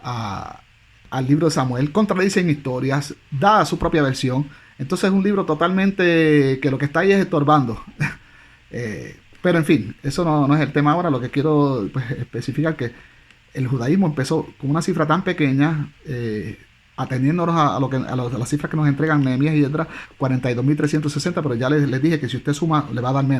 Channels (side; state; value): both; identical; correlation 1.00